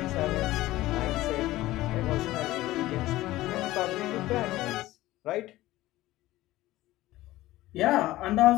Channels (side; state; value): right; quieter; 16.8 dB